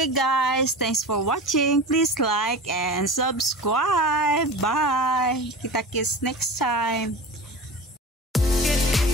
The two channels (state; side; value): normal; both; correlation 0.32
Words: guys, thanks for watching. Please like and subscribe. Bye. Kita-kits next time.